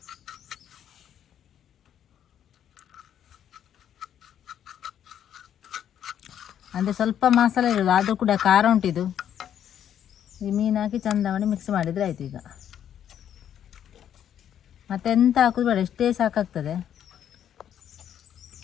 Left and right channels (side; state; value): right; quieter; 9.8 dB